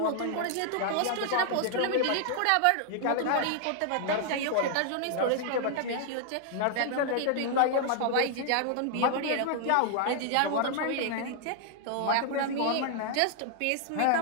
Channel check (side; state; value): both; different; correlation 0.00